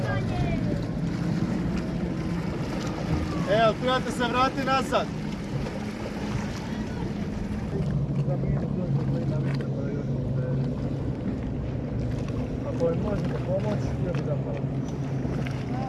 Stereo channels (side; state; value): both; identical; correlation 1.00